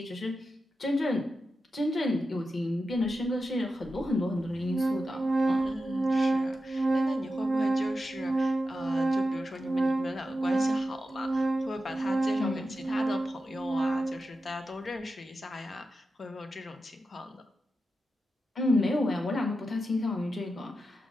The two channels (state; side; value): normal; both; correlation 0.90